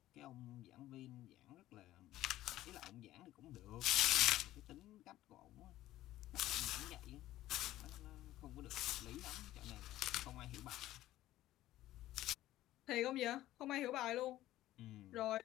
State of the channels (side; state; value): right; quieter; 14.8 dB